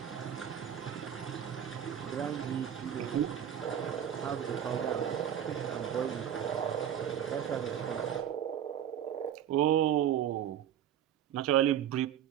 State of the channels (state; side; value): quieter; left; 9.8 dB